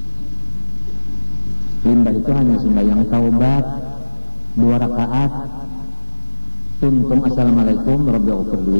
Limbah itu hanya sembahyang taubat 2 rakaat. Tuntung assalamualaikum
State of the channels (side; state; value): both; inverted; correlation -1.00